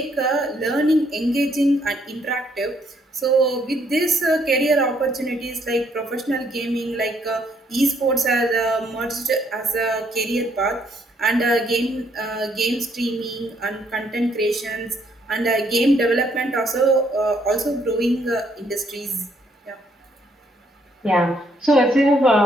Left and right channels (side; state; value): both; normal; correlation 0.70